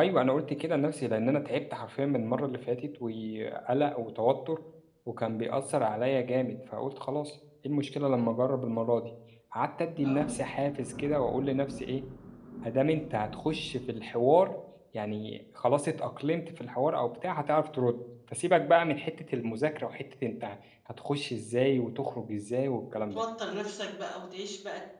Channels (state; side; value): identical; both; correlation 1.00